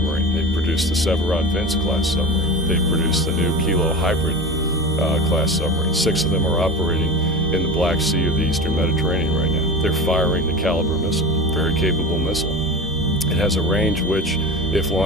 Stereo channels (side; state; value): both; normal; correlation 0.30